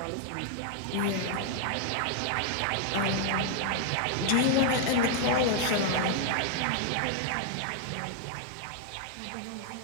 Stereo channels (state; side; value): different; both; correlation 0.00